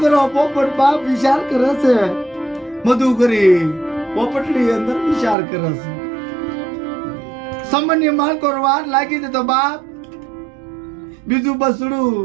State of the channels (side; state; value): left; drops out; at 5.4 s